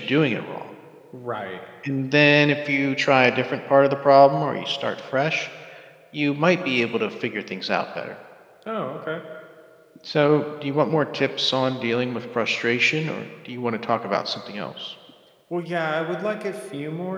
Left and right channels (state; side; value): identical; both; correlation 1.00